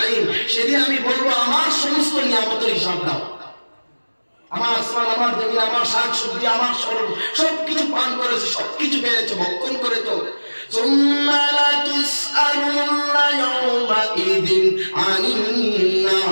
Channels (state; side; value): inverted; both; correlation -1.00